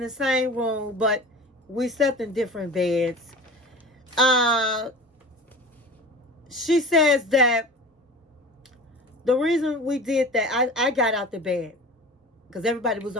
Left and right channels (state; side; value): normal; both; correlation 0.37